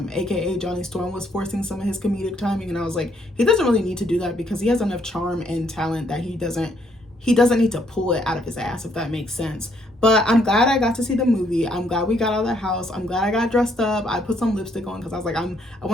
aka Johnny Storm, was forcing some of his comedic timing, and I was like, he doesn't really need to do that because he has enough charm and talent that he doesn't need to pull it out of his ass, if that makes sense. But I'm glad I got to see the movie. I'm glad we got out of the house. I'm glad I got dressed up. I put some lipstick on because I was like, I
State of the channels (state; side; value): normal; both; correlation 0.70